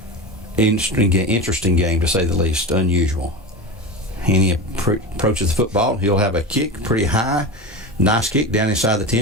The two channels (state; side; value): normal; both; correlation 0.25